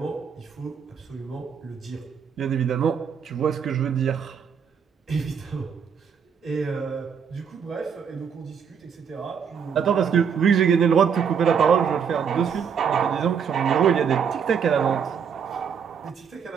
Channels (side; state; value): left; quieter; 7.0 dB